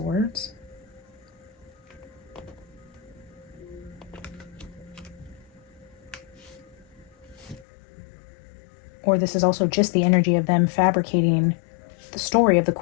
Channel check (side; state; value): right; drops out; at 7.7 s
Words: Or this is also just the energy of them fabricating the story of the